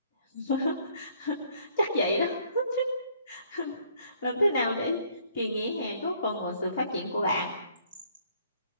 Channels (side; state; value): both; inverted; correlation -0.63